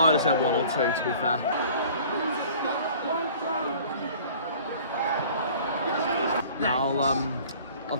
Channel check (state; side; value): inverted; both; correlation -0.48